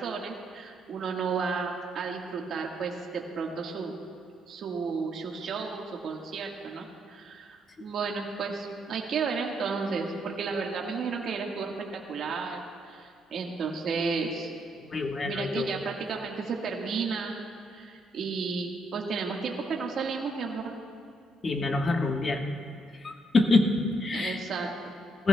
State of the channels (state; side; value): normal; both; correlation 0.74